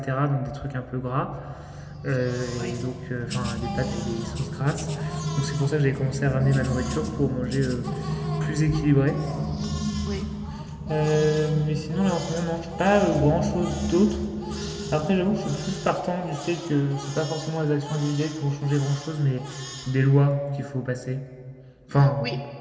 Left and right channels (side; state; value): both; identical; correlation 1.00